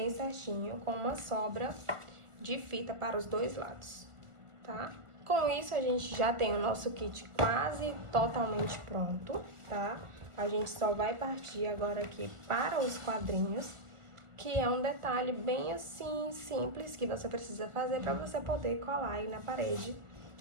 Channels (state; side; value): late; left; 1.5 ms